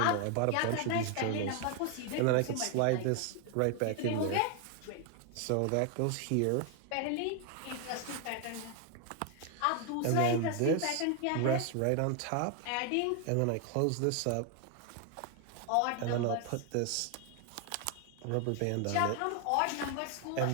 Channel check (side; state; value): both; different; correlation 0.01